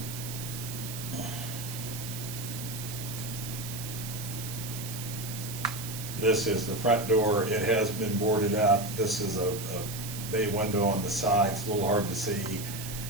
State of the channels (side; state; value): right; noise; hiss, 9 dB below the sound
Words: This is the front door. It has been boarded up. This is a bay window on the side. It's a little hard to see.